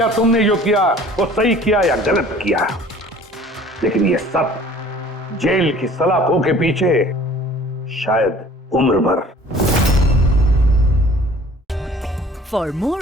तुमने जो किया वो सही किया या गलत किया। लेकिन ये सब जेल की सलाखों के पीछे शायद उम्र भर। For more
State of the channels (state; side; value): normal; both; correlation 0.50